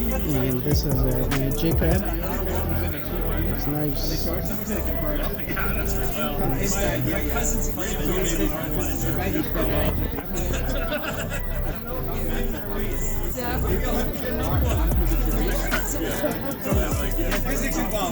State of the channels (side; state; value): both; identical; correlation 1.00